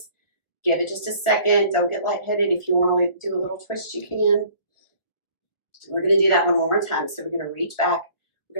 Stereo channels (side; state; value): right; late; 1.2 ms